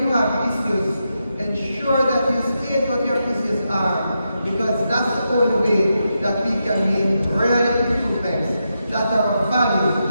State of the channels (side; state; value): both; inverted; correlation -0.85